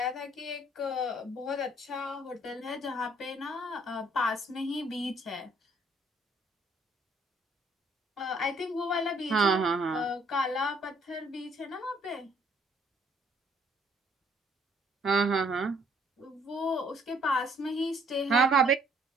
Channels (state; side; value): normal; both; correlation 0.63